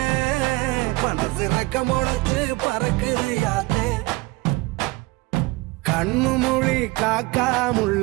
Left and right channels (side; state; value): left; quieter; 23.4 dB